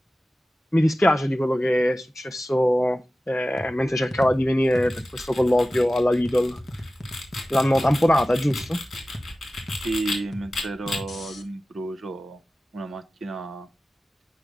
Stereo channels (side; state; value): both; normal; correlation 0.95